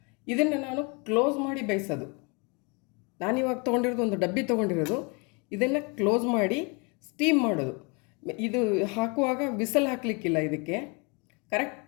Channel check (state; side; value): quieter; right; 31.6 dB